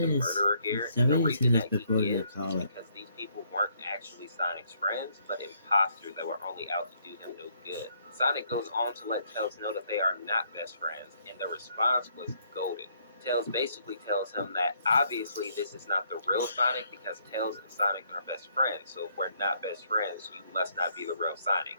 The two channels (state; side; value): inverted; both; correlation -0.69